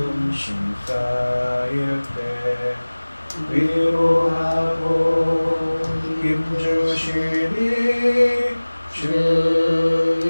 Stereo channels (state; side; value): inverted; both; correlation -1.00